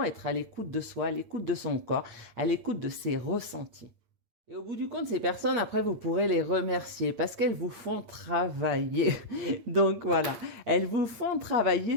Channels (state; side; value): late; left; 8.7 ms